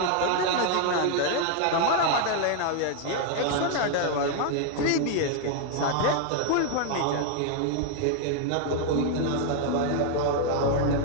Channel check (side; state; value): both; different; correlation 0.00